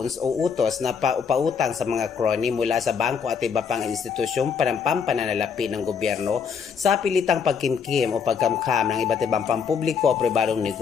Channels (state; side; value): quieter; right; 6.5 dB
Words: o utos na pautang sa mga crony mula sa bangko at iba pang institusyong panampananalapi ng gobyerno sa pilitang pagkimkim o pagkamkam ng iba't ibang pampubliko o pribadong